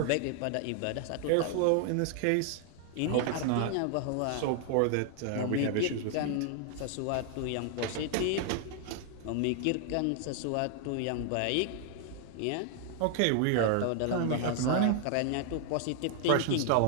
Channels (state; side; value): different; both; correlation 0.00